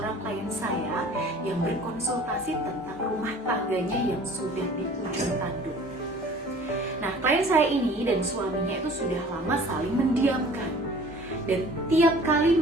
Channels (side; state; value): both; normal; correlation 0.48